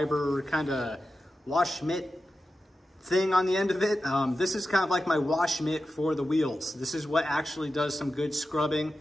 kind of wash mitt thing on the end of it. This is kind of like my wash mitt for the wheels. This is what actually does some good scrubbing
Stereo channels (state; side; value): normal; both; correlation 0.92